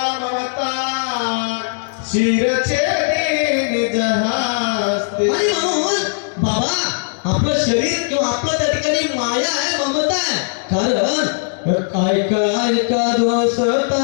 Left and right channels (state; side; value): silent; right; digital silence